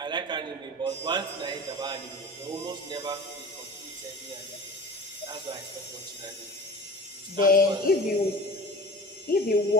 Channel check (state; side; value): normal; both; correlation 0.37